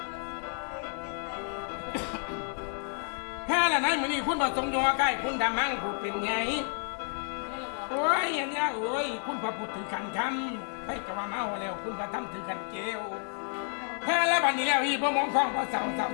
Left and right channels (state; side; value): silent; right; 57 dB below the other